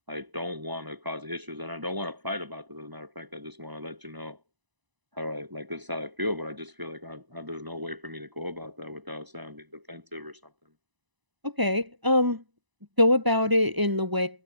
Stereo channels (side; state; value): left; late; 1.0 ms